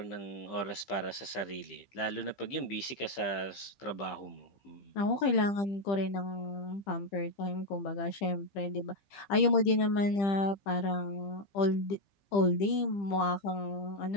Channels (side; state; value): right; late; 15 ms